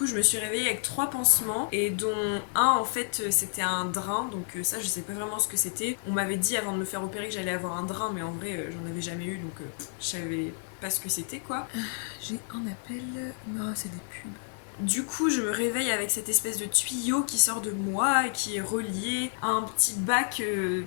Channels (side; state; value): right; silent; 58 dB below the other